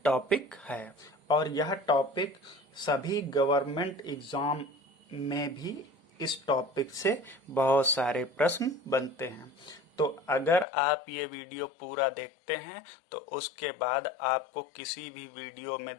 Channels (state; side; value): drops out; right; at 10.7 s